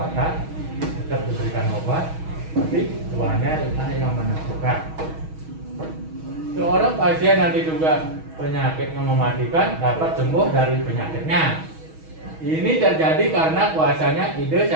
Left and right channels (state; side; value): late; left; 6.3 ms